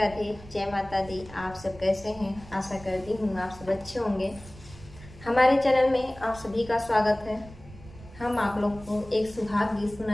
जय माता दी। आप सब कैसे हैं? आशा करती हूँ आप सब अच्छे होंगे। हमारे चैनल में आप सभी का स्वागत है। हम आप लोग को एक सुहाग गीत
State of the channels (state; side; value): noise; right; rumble, 18 dB below the sound